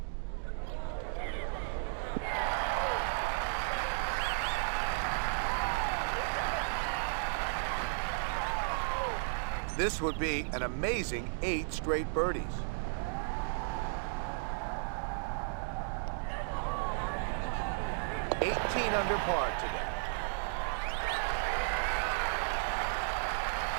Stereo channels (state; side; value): silent; left; digital silence